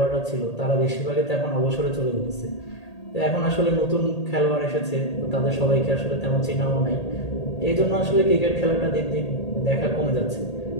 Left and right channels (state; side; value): late; right; 1.8 ms